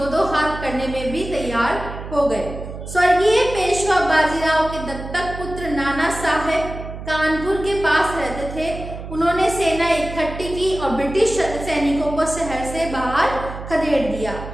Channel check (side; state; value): right; noise; hum, 10 dB below the sound